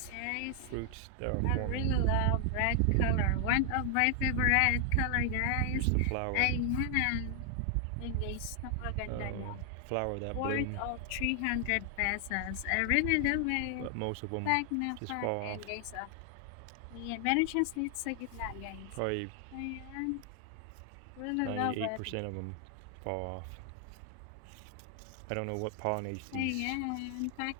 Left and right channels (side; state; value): both; different; correlation 0.00